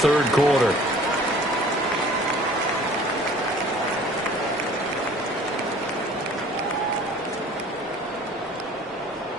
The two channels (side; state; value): both; normal; correlation 0.50